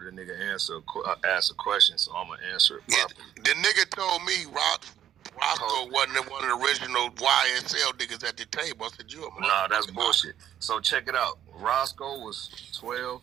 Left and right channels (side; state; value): left; quieter; 10.8 dB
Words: a nigga ask a question, so I'm going to answer it properly. The nigga told me Roscoe wasn't one of the original YSL niggas at the table. I said, Nah, that's bullshit. So check it out. Roscoe was 12,